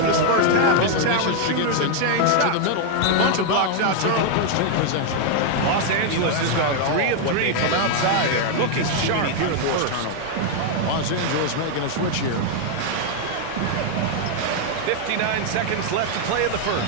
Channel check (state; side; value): different; both; correlation 0.00